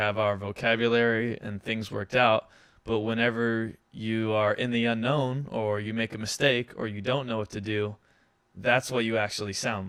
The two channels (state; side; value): identical; both; correlation 1.00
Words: our vocabulary and things worked out. But whenever you are in the unknown, or you make a mistake, or you don't know what to do, that's what you actually